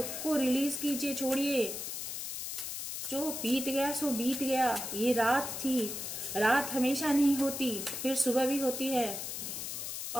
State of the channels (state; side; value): noise; left; hiss, 5 dB below the sound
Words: को रिलीज कीजिए, छोड़िए। जो बीत गया सो बीत गया। ये रात थी, रात हमेशा नहीं होती, फिर सुबह भी होती है।